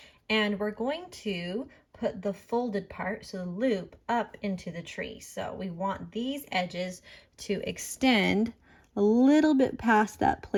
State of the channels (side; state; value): both; identical; correlation 1.00